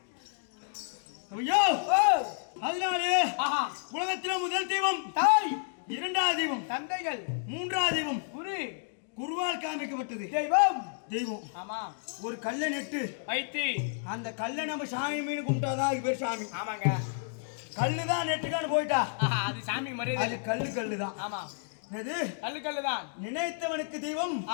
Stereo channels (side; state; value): right; silent; digital silence